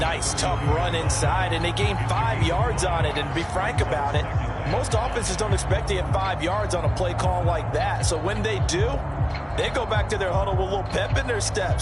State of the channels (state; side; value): identical; both; correlation 1.00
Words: tough run inside, and they gained 5 yards on it. And to be frank about it, most offenses don't expect to get 5 yards on a play call like that. So when they do, they go back to their huddle with a little pep in their